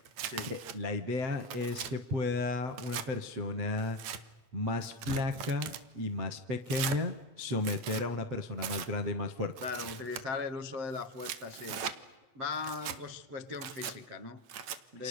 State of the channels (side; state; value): left; late; 8.8 ms